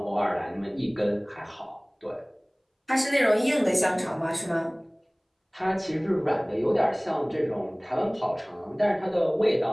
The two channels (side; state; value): both; identical; correlation 1.00